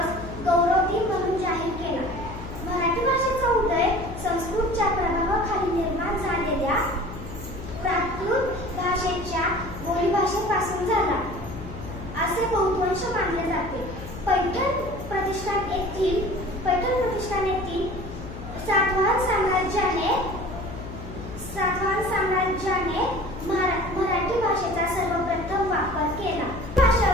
गौरव दिन म्हणून जाहीर केला. मराठी भाषेचा उदय संस्कृतच्या प्रभावाखाली निर्माण झालेल्या प्राकृत भाषेच्या बोलीभाषेपासून झाला असे बहुतांश मानले जाते. पैठण प्रतिष्ठान येथील सातवाहन साम्राज्याने मराठी भाषेचा सर्वप्रथम वापर केला.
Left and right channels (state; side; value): noise; left; hum, 11 dB below the sound